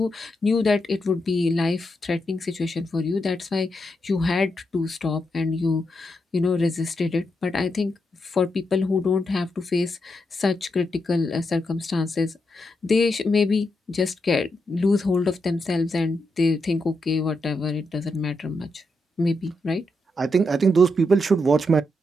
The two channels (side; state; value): both; normal; correlation 0.83